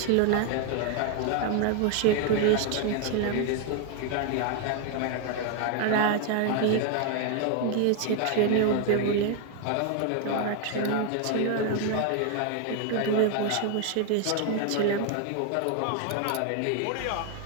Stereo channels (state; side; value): different; both; correlation 0.00